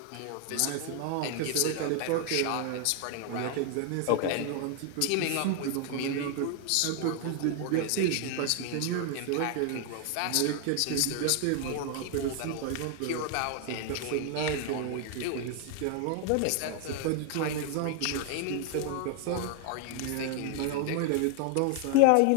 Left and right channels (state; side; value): different; both; correlation 0.00